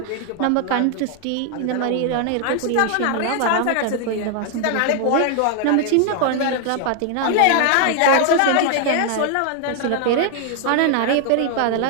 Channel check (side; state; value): both; different; correlation 0.00